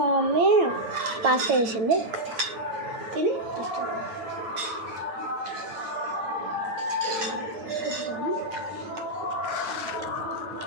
మమ్మీ పాస్తా చేసింది, తిని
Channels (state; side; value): late; left; 9.6 ms